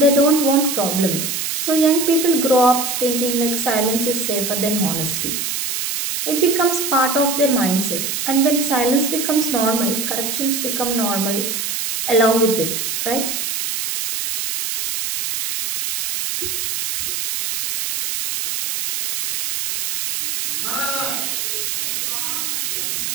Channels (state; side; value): noise; right; hiss, 2 dB below the sound